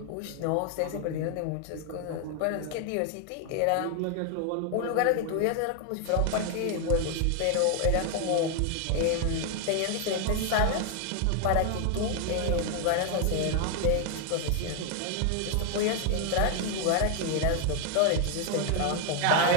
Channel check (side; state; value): both; different; correlation 0.00